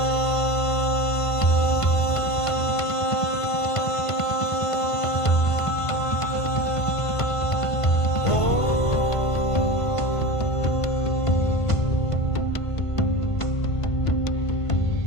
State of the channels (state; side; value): late; right; 1.5 ms